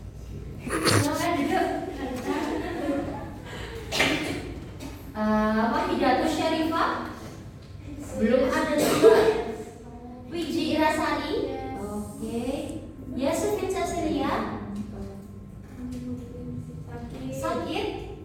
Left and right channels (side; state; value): both; identical; correlation 1.00